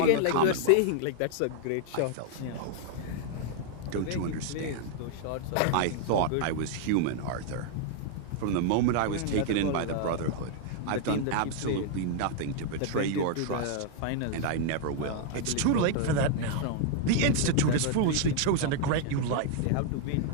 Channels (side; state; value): both; different; correlation 0.00